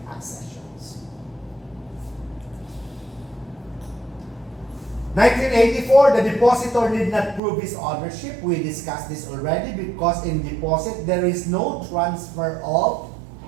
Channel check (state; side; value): drops out; left; at 7.4 s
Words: accessions. 1984, the depositor did not prove his ownership. We discussed this already because in deposit, there is no transfer of